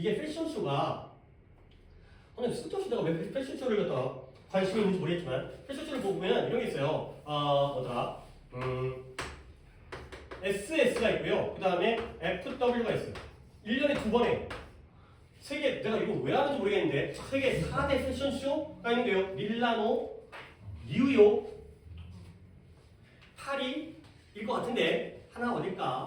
패션쇼가 근데 쓸데없이 내가 왜 패션쇼를 갖다가 관심이 있는지 모르겠지만 패션쇼를 보면 이런 게 있어요. 뭐더라? SS가 있고요. 그 다음에 FW가 있어요. 1년에 2번에 세계, 내가 이거 왜 하는지 모르겠는데 세계 4대 패션쇼가 있는데요. 밀라노, 뉴욕, 파리일 것 같은데 하나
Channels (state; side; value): identical; both; correlation 1.00